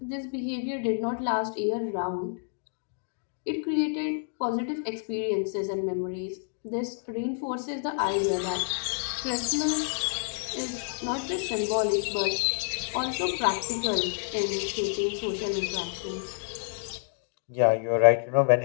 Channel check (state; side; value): silent; right; digital silence